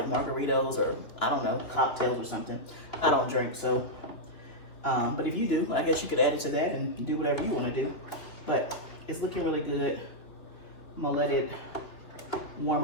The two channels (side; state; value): right; late; 3.1 ms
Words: margaritas or I don't know, cocktails or something. I don't drink, so, but if you do, I guess you could add it to that and do whatever you wanna do. But it's looking really good. I'm gonna let it warm